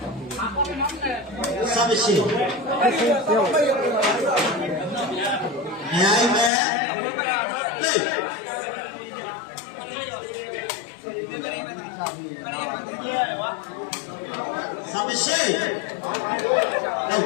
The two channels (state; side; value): drops out; right; at 6.5 s